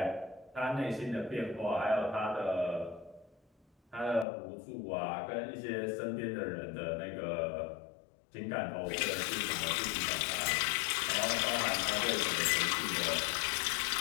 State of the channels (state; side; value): drops out; right; at 4.2 s